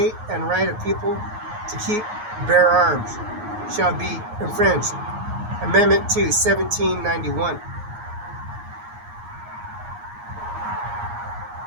and right of people to keep, bear arms, shall be infringed. Amendment 2, 1791.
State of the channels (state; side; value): late; left; 9.5 ms